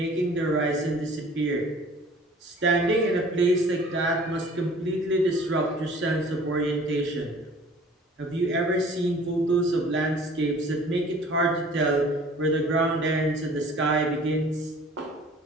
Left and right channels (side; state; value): both; normal; correlation 0.49